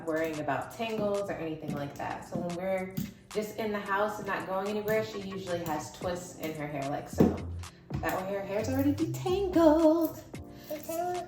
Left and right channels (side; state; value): both; identical; correlation 1.00